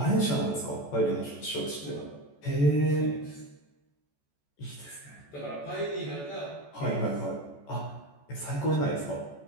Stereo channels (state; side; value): late; right; 14 ms